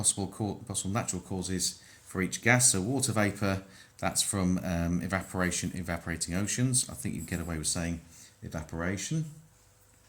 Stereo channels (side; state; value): both; identical; correlation 1.00